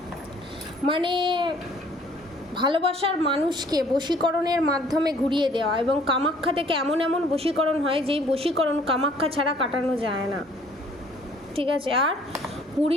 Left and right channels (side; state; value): both; normal; correlation 0.57